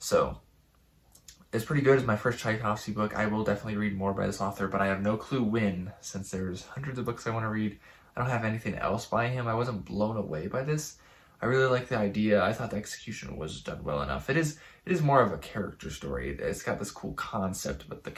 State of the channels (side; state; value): both; identical; correlation 1.00